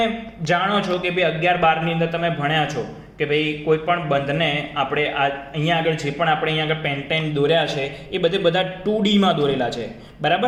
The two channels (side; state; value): both; identical; correlation 1.00